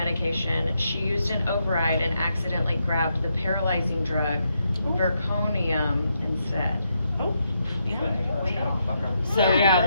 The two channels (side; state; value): both; inverted; correlation -0.80